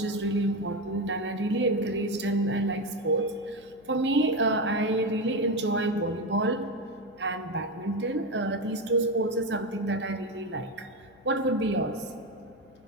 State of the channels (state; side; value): noise; left; hum, 28 dB below the sound